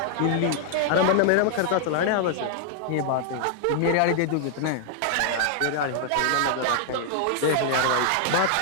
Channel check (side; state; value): both; different; correlation -0.01